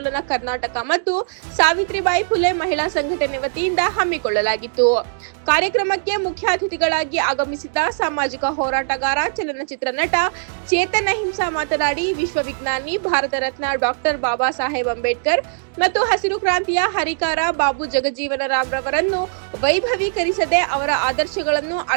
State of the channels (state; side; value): silent; left; digital silence